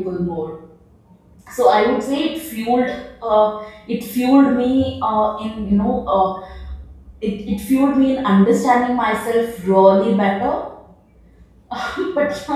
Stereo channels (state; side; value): identical; both; correlation 1.00